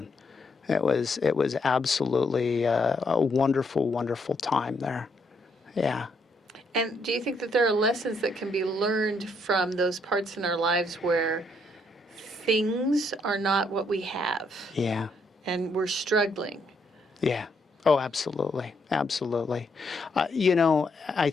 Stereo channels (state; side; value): normal; both; correlation 0.74